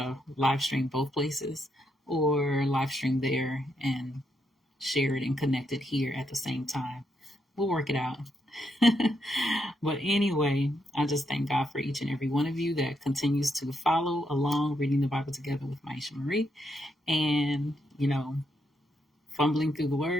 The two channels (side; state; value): both; normal; correlation 0.79